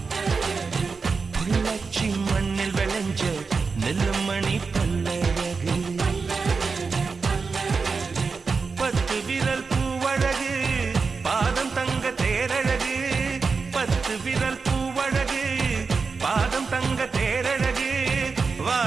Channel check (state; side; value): quieter; left; 4.8 dB